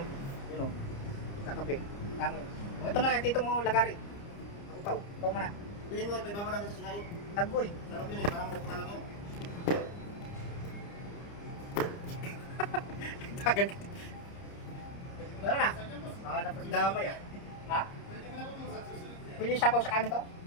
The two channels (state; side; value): late; right; 30 ms